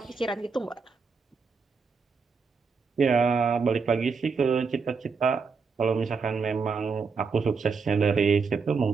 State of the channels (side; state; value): left; quieter; 5.1 dB